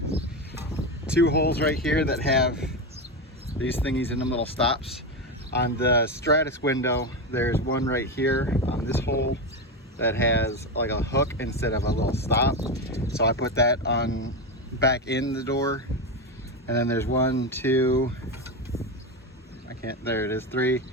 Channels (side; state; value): both; normal; correlation 0.15